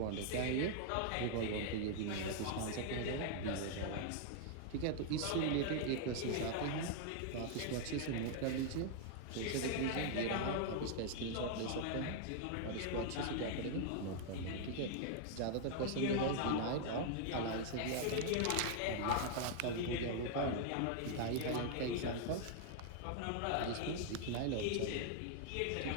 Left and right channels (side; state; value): both; different; correlation 0.00